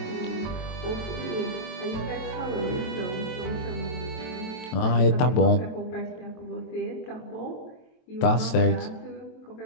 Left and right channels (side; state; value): right; late; 23 ms